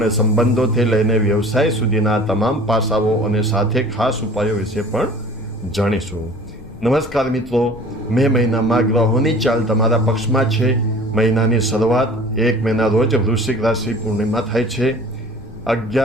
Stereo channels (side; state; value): left; noise; rumble, 17 dB below the sound